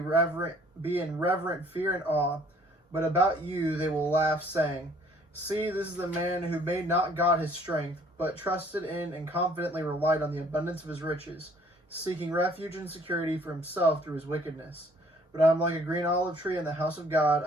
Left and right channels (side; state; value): both; normal; correlation 0.59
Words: reverent fear and awe, but about you they will laugh, saying, See, this is the man who made not God his strength, but trusted in and confidently relied on the abundance of his riches, seeking refuge and security for himself through his wickedness. But I am like a green olive tree in the house of God.